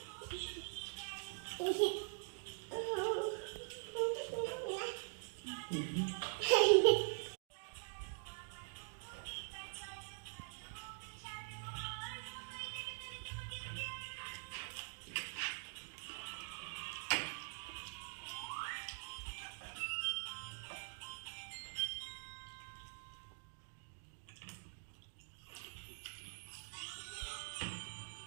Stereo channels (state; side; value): silent; left; digital silence